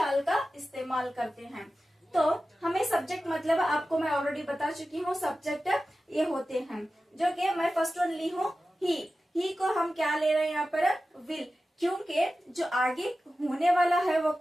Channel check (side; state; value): both; normal; correlation 0.94